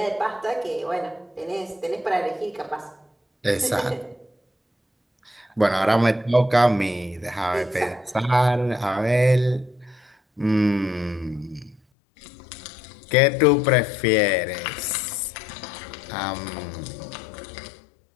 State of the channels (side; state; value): right; drops out; at 11.8 s